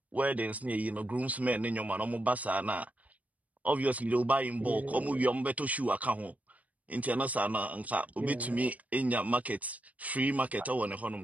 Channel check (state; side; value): late; left; 0.071 ms